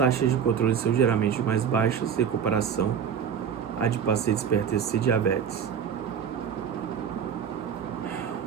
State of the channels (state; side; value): quieter; left; 7.7 dB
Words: de controle são geralmente mais baixas em comparação à de pacientes hipertensos e diabetes.